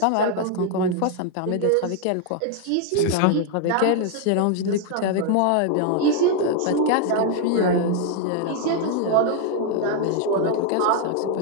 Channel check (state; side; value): different; both; correlation 0.00